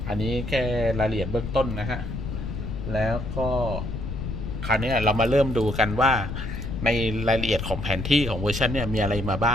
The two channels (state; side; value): noise; left; rumble, 5 dB below the sound